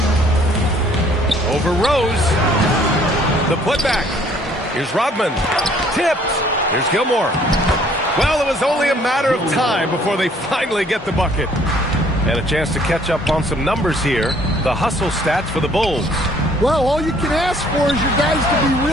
Over Rose. The putback. Here's Rodman. Tipped. Here's Gilmore. Well, it was only a matter of time before they finally get the bucket. And a chance to catch up on some numbers here. The hustle stats for the Bulls. Well, all you can ask for is your guys to be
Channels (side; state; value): both; normal; correlation 0.60